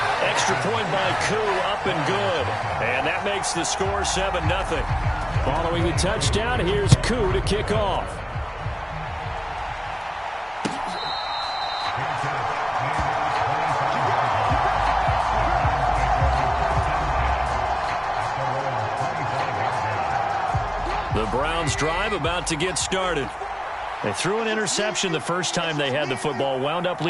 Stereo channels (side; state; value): both; identical; correlation 1.00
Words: Extra point by Koo, up and good. And that makes the score 7-0. Following the touchdown, here's Koo to kick off. The Browns drive about to get started. They threw an interception the first time they had the football, wound up